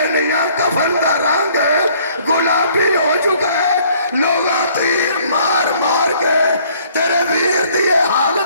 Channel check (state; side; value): inverted; both; correlation -0.60